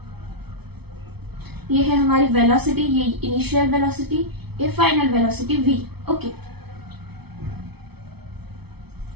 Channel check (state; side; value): late; left; 0.98 ms